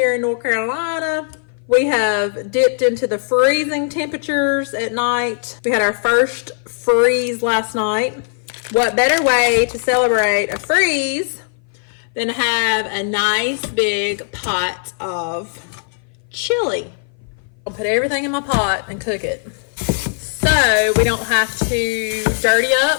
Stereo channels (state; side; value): silent; right; 59 dB below the other